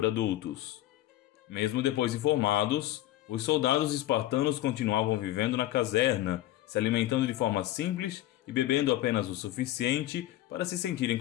adultos. Mesmo depois de formados, os soldados espartanos continuavam vivendo na caserna, se alimentando de forma simples e bebendo apenas o suficiente para se sentirem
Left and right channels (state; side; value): quieter; right; 14.7 dB